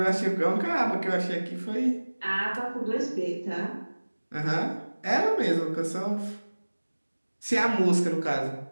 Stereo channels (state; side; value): inverted; both; correlation -1.00